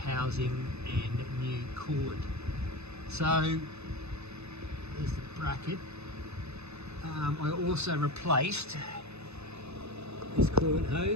and new coolant. So there's the bracket. I also replaced this coolant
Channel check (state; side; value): late; left; 0.80 ms